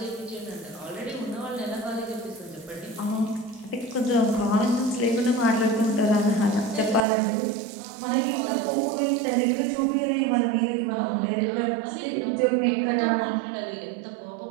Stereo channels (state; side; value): drops out; left; at 7.1 s